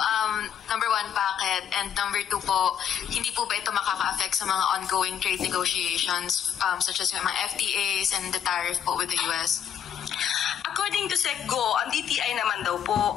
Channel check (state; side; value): quieter; right; 8.9 dB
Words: Number one, bakit? And number two po, hindi po ba ito makaka-affect sa mga ongoing trade negotiations such as yung mga FTAs and the tariff po with the US? According to SecGo, ang DTI naman daw